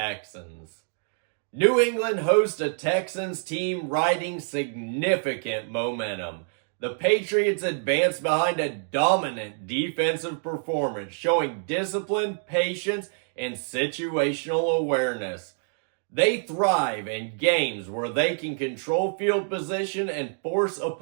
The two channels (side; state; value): left; silent; digital silence